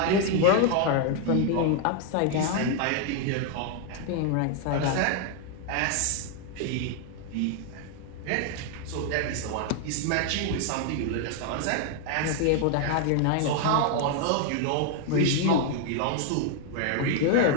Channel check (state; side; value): different; both; correlation 0.00